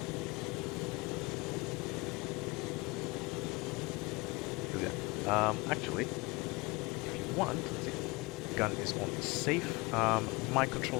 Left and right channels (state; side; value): quieter; right; 25.4 dB